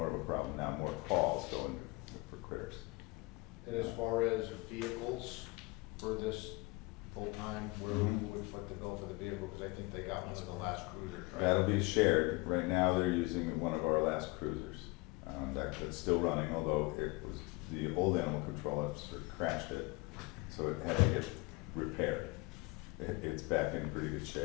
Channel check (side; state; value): right; quieter; 24.3 dB